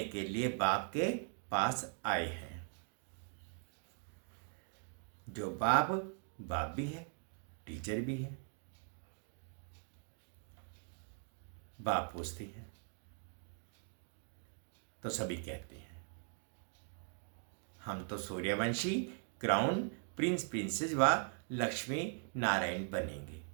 के लिए बाप के पास आए हैं। जो बाप भी है, टीचर भी है। बाप पूछती है तो सभी कहते हैं हम तो सूर्यवंशी क्राउन प्रिंस प्रिंसेस व लक्ष्मी नारायण बनेंगे।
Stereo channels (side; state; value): left; silent; 51 dB below the other